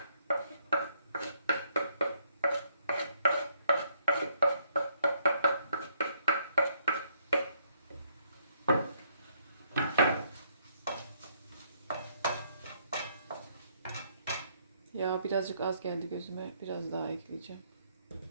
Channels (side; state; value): both; inverted; correlation -0.70